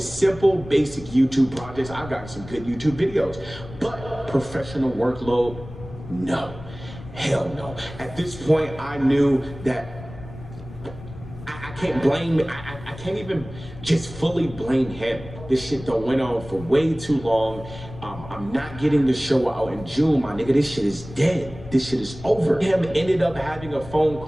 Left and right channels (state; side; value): noise; left; rumble, 15 dB below the sound